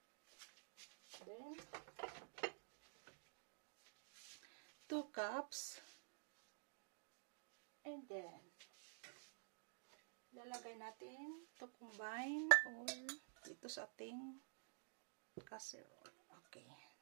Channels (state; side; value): silent; left; digital silence